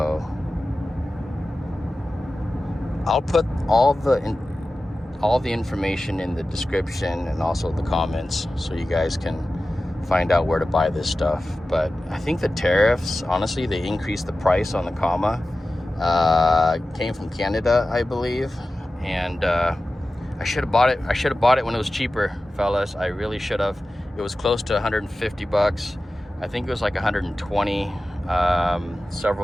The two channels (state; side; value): normal; both; correlation 0.95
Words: I'll put all the information in the description and also the comments, so you guys can find out where to buy this stuff. But I think the tariffs, honestly, they increased the price on the comma. Came from Canada, I believe, and I should have bought it. I should have bought it when it was cheaper, fellas. I really should have. It was close to 150 bucks. I think it was like 120